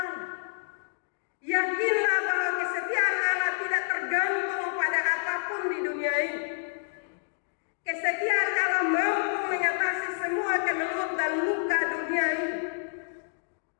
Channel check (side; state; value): right; silent; digital silence